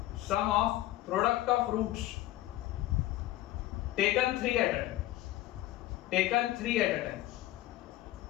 sum of product of roots taken 3 at a time, taken 3 at a time.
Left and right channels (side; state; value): right; quieter; 15.7 dB